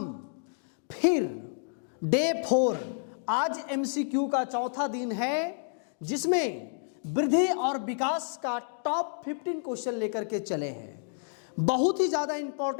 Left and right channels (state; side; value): silent; right; digital silence